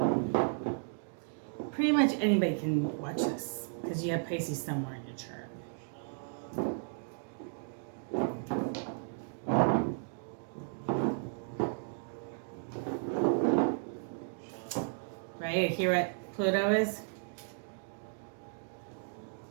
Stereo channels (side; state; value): left; silent; digital silence